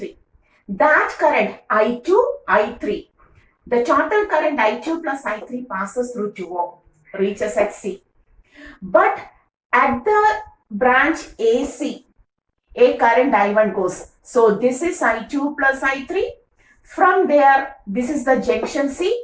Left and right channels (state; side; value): identical; both; correlation 1.00